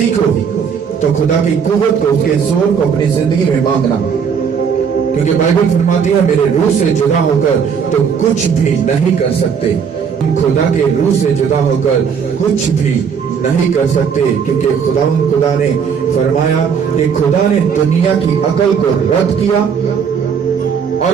तो खुदा की कुव्वत को, उसके जोर को अपनी जिंदगी में मांगना। क्योंकि बाइबल फरमाती है, मेरे रूह से जुदा होकर तो कुछ भी नहीं कर सकते। हम खुदा के रूह से जुदा होकर कुछ भी नहीं कर सकते, क्योंकि खुदा ने फरमाया कि खुदा ने दुनिया की अकल को रद्द किया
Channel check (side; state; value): left; quieter; 6.7 dB